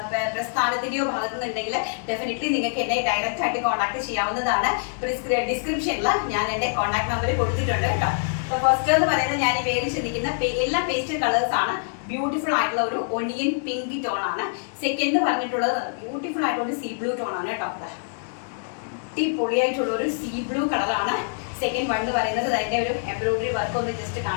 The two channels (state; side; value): silent; right; digital silence